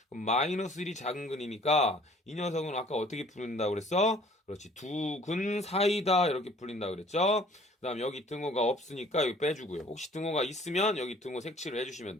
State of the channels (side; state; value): both; normal; correlation 0.54